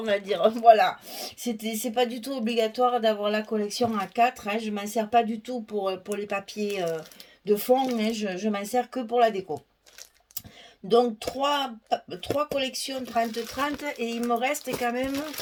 va dire. Voilà. C'est pas du tout obligatoire d'avoir la collection A4, hein. Je m'en sers pas du tout pour les papiers de fond, mais je m'en sers que pour la déco. Donc trois collections 30-30 et il me reste quand même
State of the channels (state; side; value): identical; both; correlation 1.00